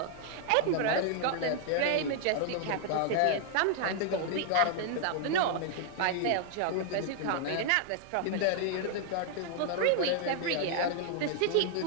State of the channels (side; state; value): both; different; correlation -0.01